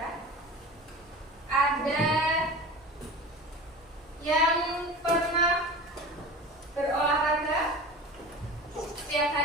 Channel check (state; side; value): normal; both; correlation 0.34